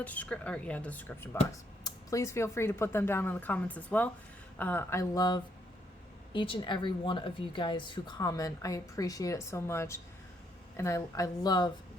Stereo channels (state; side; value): normal; both; correlation 0.73